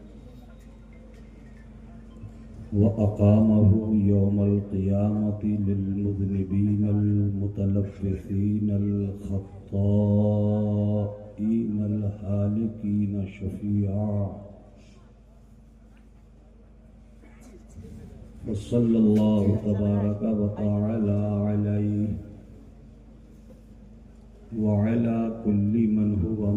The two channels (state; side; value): identical; both; correlation 1.00